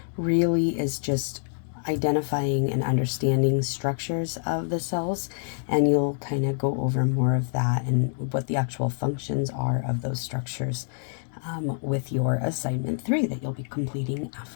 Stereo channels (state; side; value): silent; right; digital silence